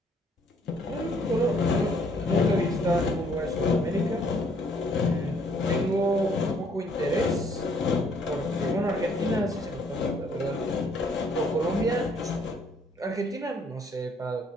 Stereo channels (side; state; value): both; normal; correlation 0.64